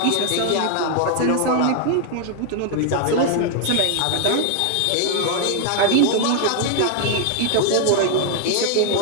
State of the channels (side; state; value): both; different; correlation 0.00